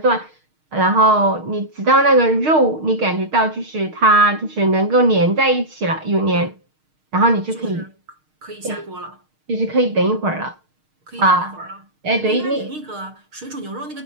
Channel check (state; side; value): late; left; 6.5 ms